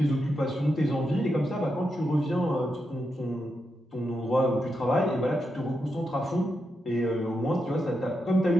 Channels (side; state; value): both; normal; correlation 0.85